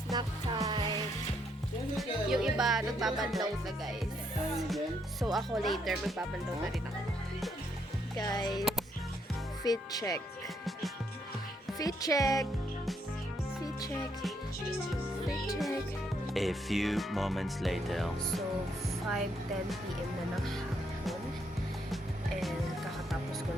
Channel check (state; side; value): normal; both; correlation 0.74